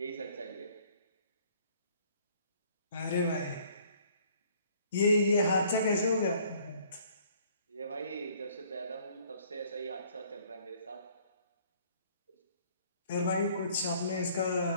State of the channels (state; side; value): inverted; both; correlation -0.59